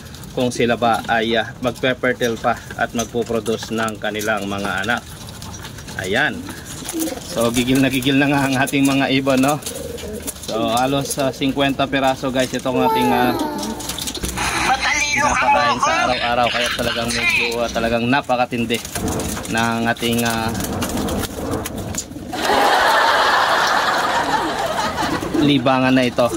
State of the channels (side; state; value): both; identical; correlation 1.00